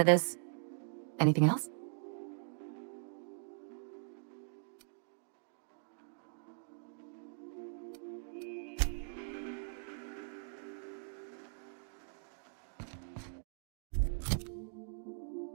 of this. Anything else?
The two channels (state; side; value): silent; left; digital silence